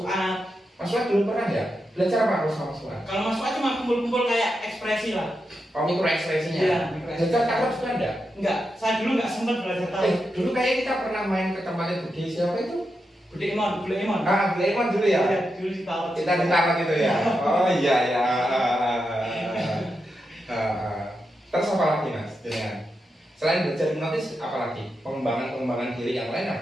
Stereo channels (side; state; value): both; normal; correlation 0.87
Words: Mas Fuad dulu pernah ya? Belajar apa kalau sama Mas Fuad? Kalau Mas Fuad cuma kumpul-kumpul kayak ekspresi lah. Oh mikro ekspresinya? Iya. Belajar taruh juga ada? Enggak, saya dulu nggak sempat belajar taruh. Dulu kayak kita pernah main ke tempatnya Budi siapa itu? Budi Emon. Budi Emon dulu ya? Iya, dulu ditaruh. Kita ditaruh gitu ya? Oh iya ya. Terus apa lagi Mas? Selain belajar hipnotis, apa lagi? Pengembangan diri yang lain